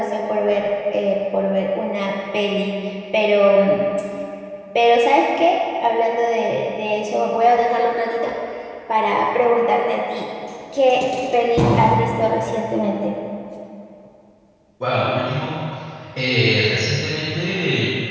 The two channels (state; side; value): identical; both; correlation 1.00